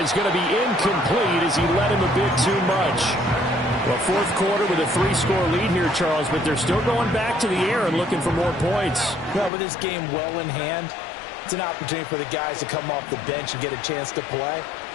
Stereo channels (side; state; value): right; drops out; at 9.5 s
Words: going to be incomplete as he let him a bit too much. Well, 4th quarter with a 3-score lead here, Charles, but they're still going back to the air and looking for more points. Well, with this game well in hand, it's an opportunity for the guys to come off the bench and get a chance to play.